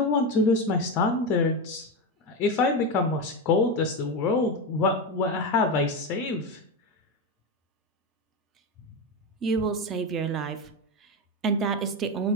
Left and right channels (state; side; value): normal; both; correlation 0.14